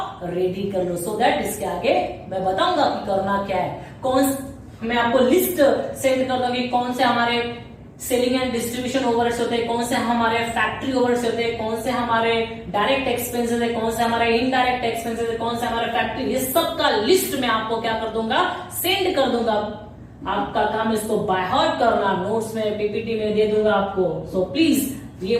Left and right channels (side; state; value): both; identical; correlation 1.00